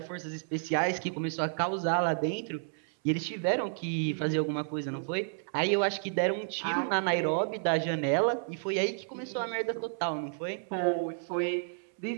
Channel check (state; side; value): silent; left; 57 dB below the other